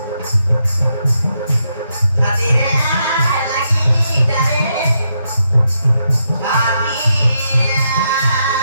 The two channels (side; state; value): both; inverted; correlation -0.81